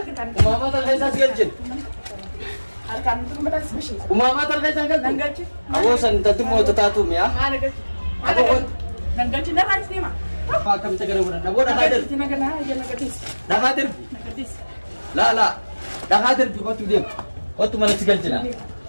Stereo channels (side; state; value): both; inverted; correlation -1.00